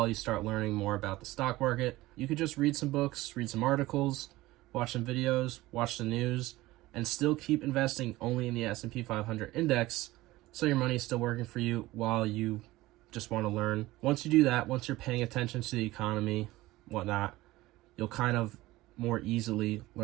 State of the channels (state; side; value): quieter; left; 18.2 dB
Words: you start learning more about the stock market. You could just read some books, read some articles, watch some videos, watch the news, and still keep investing only in the S&P 500 index, so your money is still working for you while you just want to learn. Once you do that, once you're paying attention to the economy, whatnot, you'll kind of more easily